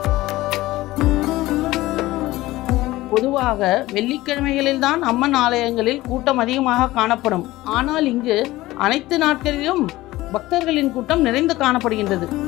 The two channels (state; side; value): quieter; right; 17.7 dB